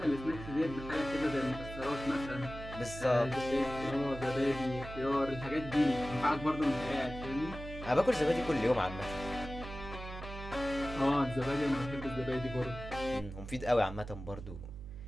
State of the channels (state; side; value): noise; right; hum, 11 dB below the sound